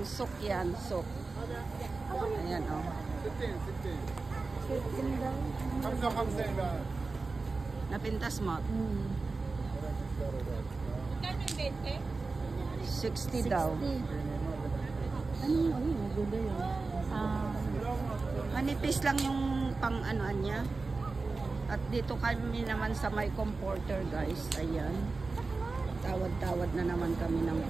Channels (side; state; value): left; quieter; 3.9 dB